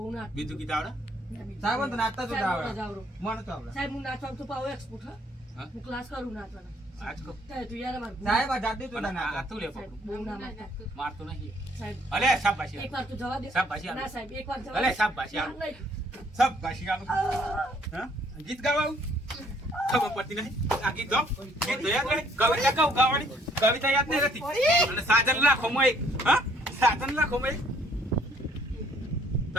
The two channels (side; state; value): both; normal; correlation 0.63